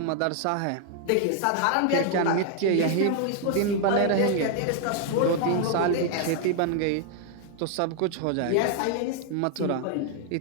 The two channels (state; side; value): different; both; correlation 0.00